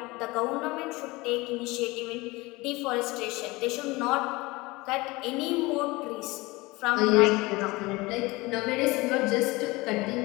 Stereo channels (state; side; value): quieter; right; 22.4 dB